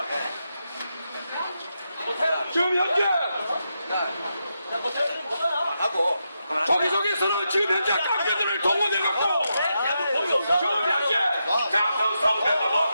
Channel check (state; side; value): inverted; both; correlation -0.85